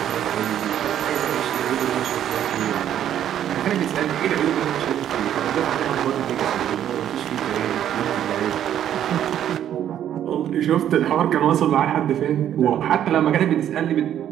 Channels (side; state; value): left; quieter; 10.6 dB